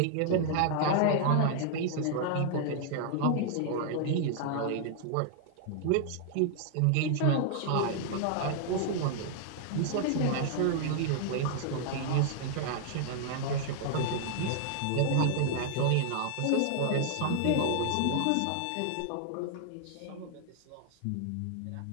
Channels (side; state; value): both; different; correlation 0.00